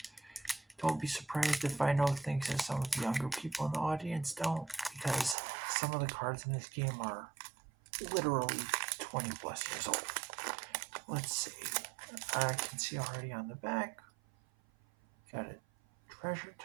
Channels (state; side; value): drops out; left; at 5.4 s